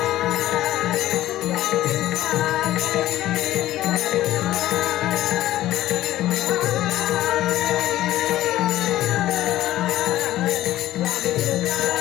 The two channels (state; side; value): quieter; right; 14.4 dB